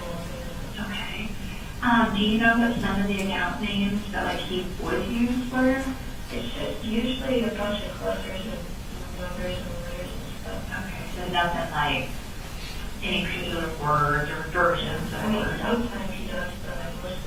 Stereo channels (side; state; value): both; identical; correlation 1.00